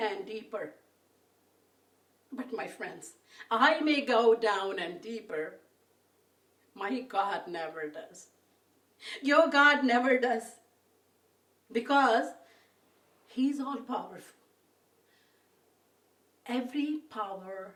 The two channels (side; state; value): both; identical; correlation 1.00